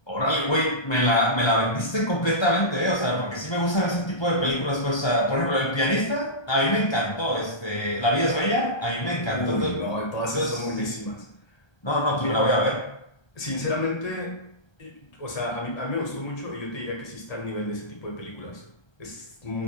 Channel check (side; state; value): right; late; 1.3 ms